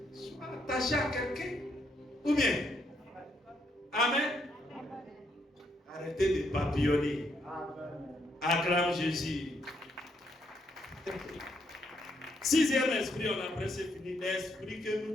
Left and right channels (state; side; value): normal; both; correlation 0.75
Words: Sois attaché à quelqu'un. Ou bien. Amen. Arrêtez de papillonner. Acclame Jésus. Sixième esprit, on a presque fini. L'esprit que nous